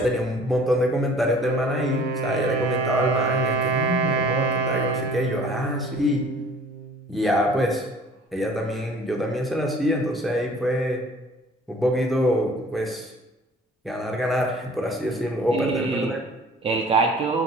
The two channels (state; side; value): normal; both; correlation 0.51